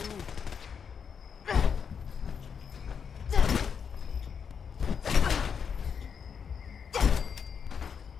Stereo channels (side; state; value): right; quieter; 6.7 dB